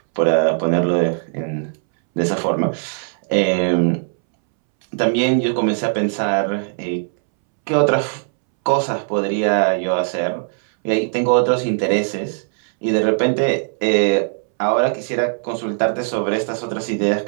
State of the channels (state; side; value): silent; left; 66 dB below the other